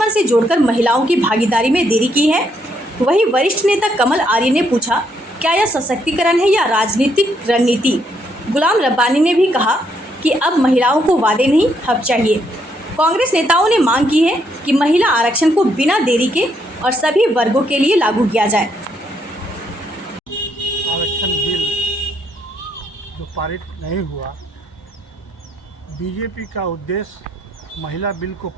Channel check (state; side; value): normal; both; correlation 0.73